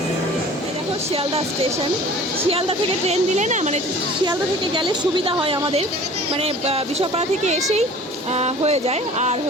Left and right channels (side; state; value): both; normal; correlation 0.45